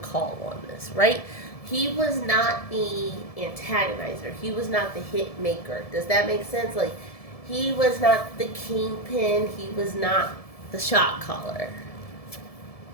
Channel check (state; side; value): late; right; 1.7 ms